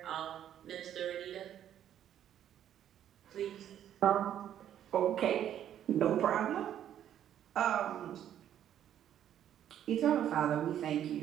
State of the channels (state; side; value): quieter; left; 10.5 dB